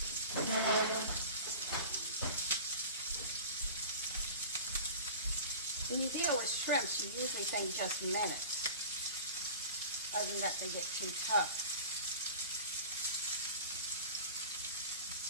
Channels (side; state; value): both; inverted; correlation -0.37